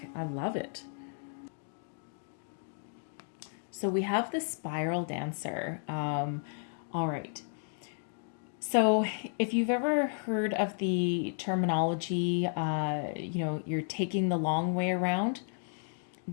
I love it. So we have the Spiral Dancer. All right. So if you've ever heard of the terminology, you're taking the long way around, it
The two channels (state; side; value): silent; right; 56 dB below the other